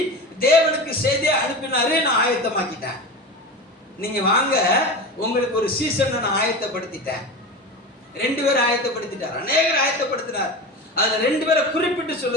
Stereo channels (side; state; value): both; normal; correlation 0.28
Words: தேவனுக்கு செய்தியை அனுப்பினாரு. நான் ஆயத்தமாக்கிட்டேன், நீங்க வாங்க, உங்களுக்கு ஒரு சீசன் நான் ஆயத்தப்படுத்திட்டேன். 2 பேரை ஆயத்தப்படுத்திட்டார், அநேகர் ஆயத்தப்படுத்தினார். அதுல 2 பேரை குறிப்பிட்டு